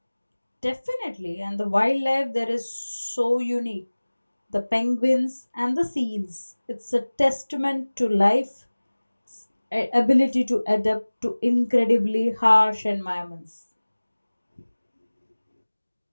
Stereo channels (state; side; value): inverted; both; correlation -1.00